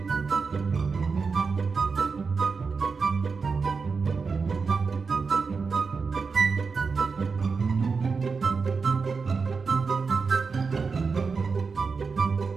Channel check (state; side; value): quieter; left; 4.9 dB